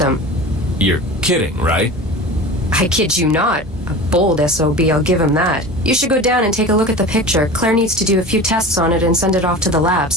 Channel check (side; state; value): both; normal; correlation 0.34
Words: You're kidding, right? I kid you not. A bold SOB, I'll give him that. You should go down and take a look at the picture. Claire needs to do a few tests on it and send it off to the